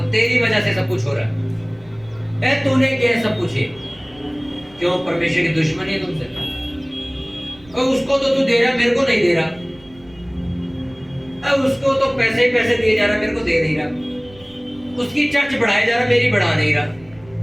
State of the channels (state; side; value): noise; right; rumble, 26 dB below the sound